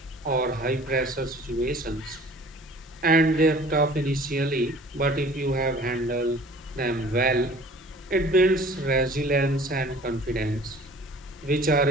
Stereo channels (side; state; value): both; normal; correlation 0.49